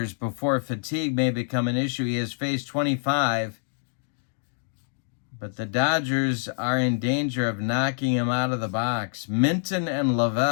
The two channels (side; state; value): right; silent; digital silence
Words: before fatigue may become an issue. He has faced 25. But the Dodgers are in danger of knocking him out of the box. Minton and